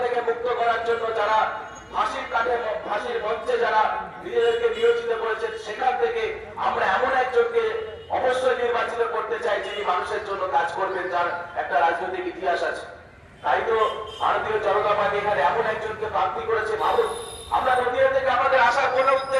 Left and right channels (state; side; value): identical; both; correlation 1.00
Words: থেকে মুক্ত করার জন্য যারা ফাঁসির কাঠে ফাঁসির মঞ্চে যারা নিজেদেরকে নিয়োজিত করেছেন, সেখান থেকে আমরা এমন একজনকে অবশ্যই নির্বাচিত করতে চাই যিনি মানুষের জন্য কাজ করবেন, যার একটা রাজনৈতিক ইতিহাস আছে। তাই তো ভারতীয় জনতা পার্টি এখানে এমন একজনকে প্রার্থী করেছে। ভাবুন, আমরা নদিয়া থেকে আমাদের আসার কোনো